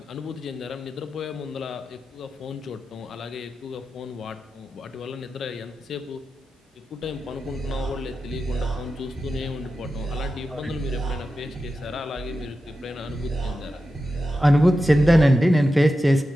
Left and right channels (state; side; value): normal; both; correlation 0.91